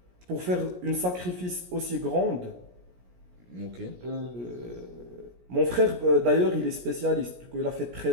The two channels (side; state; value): left; late; 17 ms